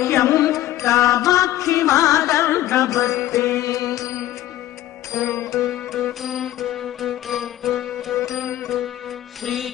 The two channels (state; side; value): quieter; right; 14.0 dB